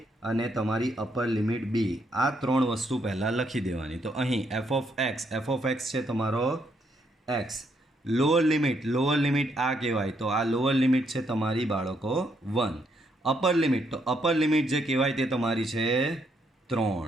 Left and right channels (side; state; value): both; normal; correlation 0.74